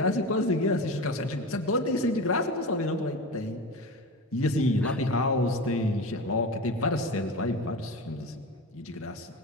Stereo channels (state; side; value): normal; both; correlation 0.27